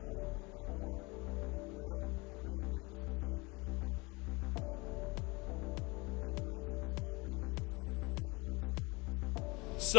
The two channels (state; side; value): quieter; right; 25.8 dB